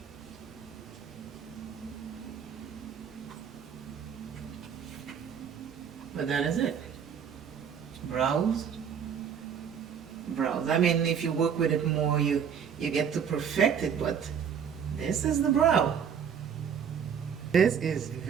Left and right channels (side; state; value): left; quieter; 7.7 dB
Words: But that is it. Browse. Browse. I mean, if you work with it more, you get to perfect it, but this is the brow. This is